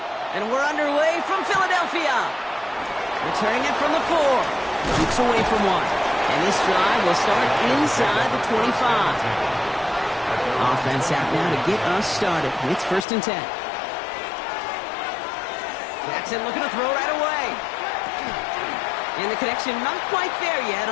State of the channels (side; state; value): right; drops out; at 13.1 s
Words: And we're underway from Philadelphia. Returning it from the 4. Keeps away from 1. And this drive will start inside the 25. Offense out now to get us started. It's 1st and 10. Jackson looking to throw right away. And the connection not quite there yet